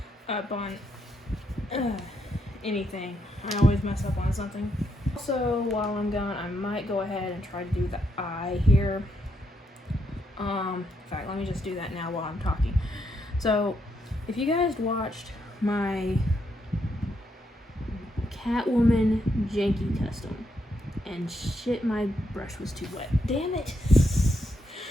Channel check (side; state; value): both; normal; correlation 0.78